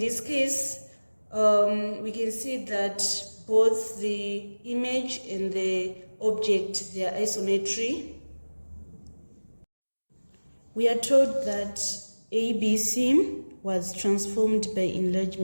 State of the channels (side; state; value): both; inverted; correlation -1.00